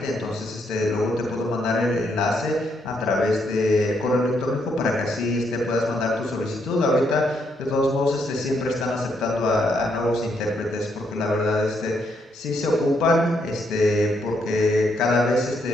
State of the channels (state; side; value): normal; both; correlation 0.75